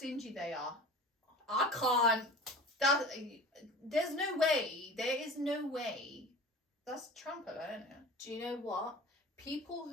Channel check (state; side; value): normal; both; correlation 0.38